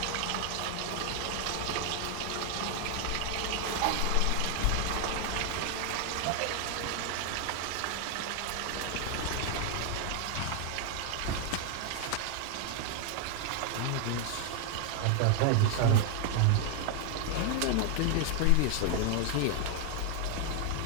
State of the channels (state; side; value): different; both; correlation 0.00